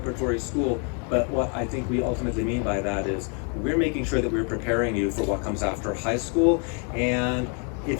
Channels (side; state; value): right; quieter; 38.8 dB